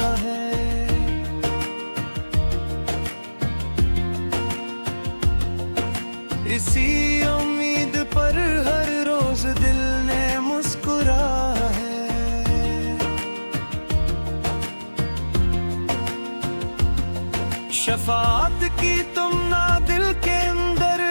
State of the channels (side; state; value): both; inverted; correlation -1.00